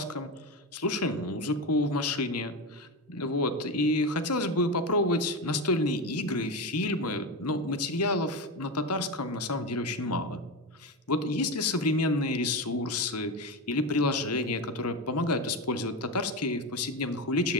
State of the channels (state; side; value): normal; both; correlation 0.17